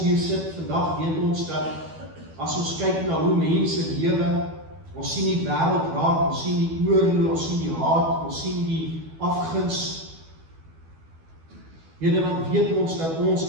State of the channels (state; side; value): late; left; 12 ms